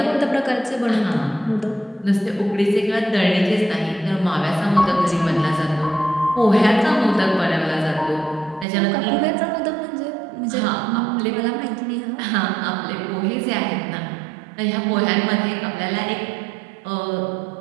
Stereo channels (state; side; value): drops out; left; at 8.7 s